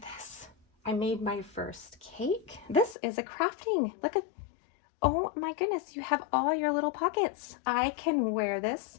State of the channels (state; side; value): drops out; right; at 3.0 s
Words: this. I made my first cake. This is a crafting. Look at, oh my goodness, you have all your little pockets. I can wear this